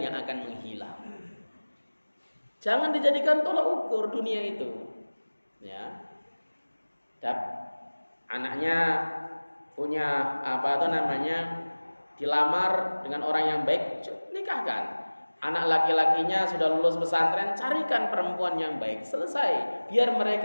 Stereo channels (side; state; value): both; inverted; correlation -1.00